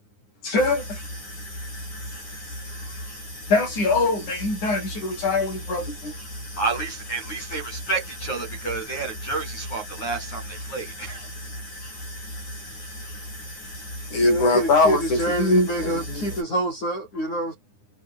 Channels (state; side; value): late; right; 9.7 ms